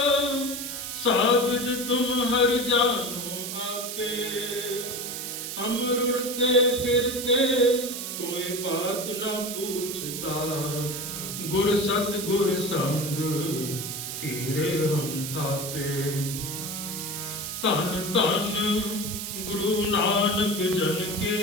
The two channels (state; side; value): noise; right; hiss, 6 dB below the sound